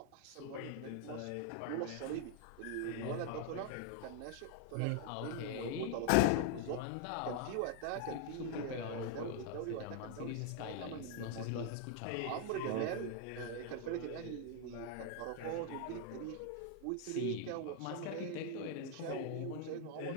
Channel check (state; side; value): different; both; correlation 0.00